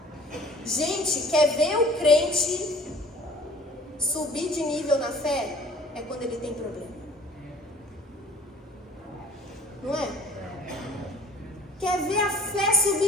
Gente, quer ver o crente subir de nível na fé? É quando ele tem problema. Não é? Quer ver a fé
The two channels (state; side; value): normal; both; correlation 0.49